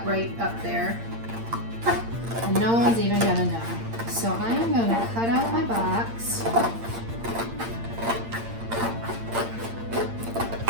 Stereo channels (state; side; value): late; left; 8.7 ms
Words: right up there. And no one's even gonna know. So I am gonna cut out my box.